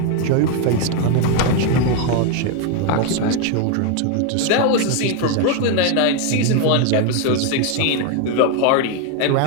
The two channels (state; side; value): different; both; correlation 0.01